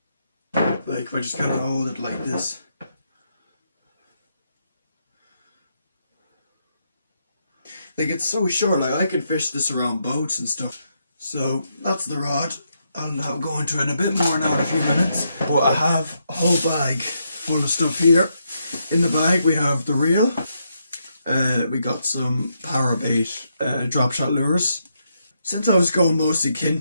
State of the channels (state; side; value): inverted; both; correlation -0.79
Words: Like if I just kind of hold it like this. Like it's so short, like I could fish this around boats and stuff. So that's the rod. I'll go into it a bit more now in a few minutes. But I have a whole bag full of stuff here. In the bag we have the reel. We got some power bait drop shot lures. Since I was going mostly